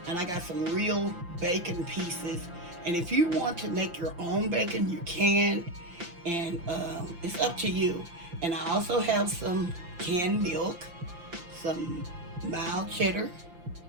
and I got some real bacon pieces. And if you want to make your own bacon, you can, and it's up to you. And I also have some canned milk, some mild cheddar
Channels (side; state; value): left; late; 5.8 ms